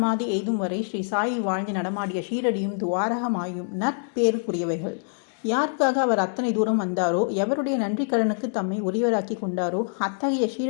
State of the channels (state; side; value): silent; right; digital silence